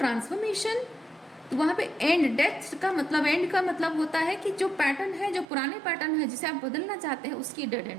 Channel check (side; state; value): left; drops out; at 5.5 s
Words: तो वहाँ पे एंड, डेथ का मतलब, एंड का मतलब होता है कि जो पैटर्न है, जो पुराने पैटर्न है जिसे आप बदलना चाहते हैं, उसकी डेड